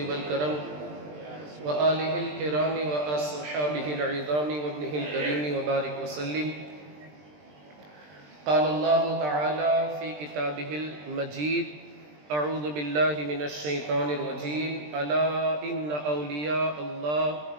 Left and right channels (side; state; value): left; late; 20 ms